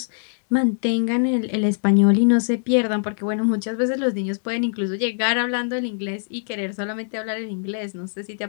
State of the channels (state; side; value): silent; right; digital silence